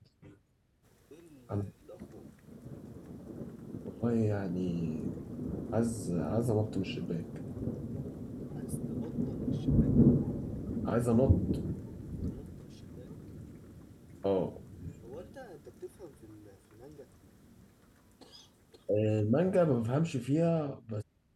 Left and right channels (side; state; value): both; identical; correlation 1.00